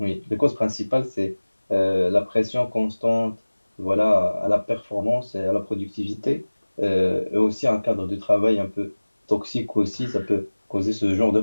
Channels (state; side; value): inverted; both; correlation -1.00